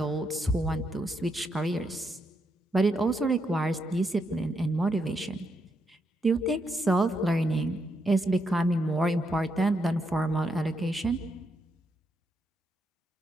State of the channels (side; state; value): both; normal; correlation 0.80